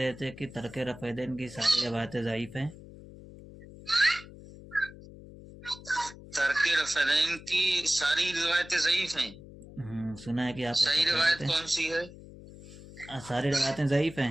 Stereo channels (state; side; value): noise; left; hum, 17 dB below the sound